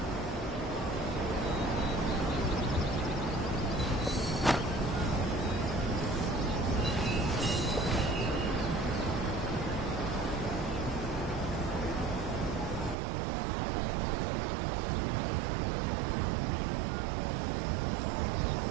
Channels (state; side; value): drops out; left; at 13.0 s